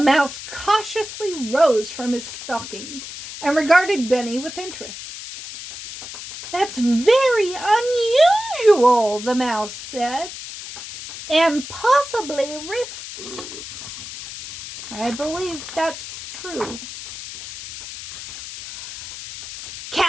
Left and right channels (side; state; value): left; noise; hiss, 11 dB below the sound